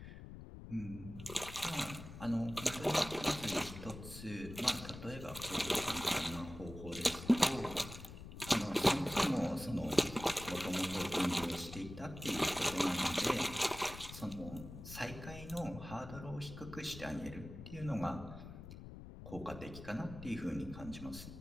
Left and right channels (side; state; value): left; noise; rumble, 12 dB below the sound